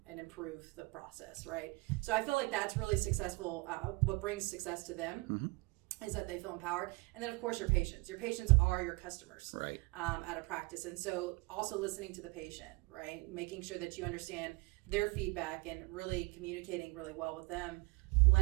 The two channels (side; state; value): left; quieter; 26.0 dB